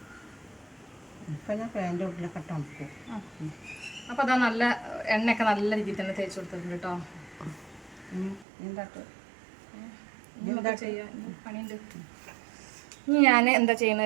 ഇപ്പം ഞാൻ ഫാൻ്റെ ഉള്ളിലൊക്കെ തണുക്കും. അപ്പോൾ അതാ നല്ല എണ്ണയൊക്കെ നല്ല രീതിയിൽ തന്നെ തേച്ച് കൊടുത്തിട്ടുണ്ട് കേട്ടോ. എന്താ ചെയ്യുക, പണിയുണ്ട്. ഇനി ഞാൻ എന്താ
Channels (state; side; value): drops out; left; at 8.5 s